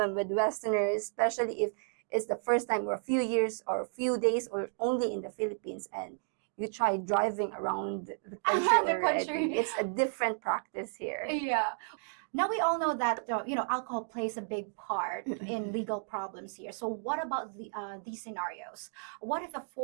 with Westerners, especially if it's the first time or a few years or a few days or only in the Philippines, and you try driving around the country. It's a different practice here. Yeah. Now we all know that, alcohol plays a big part in legal problems here. So what about these scenarios? What if a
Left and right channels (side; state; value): left; silent; digital silence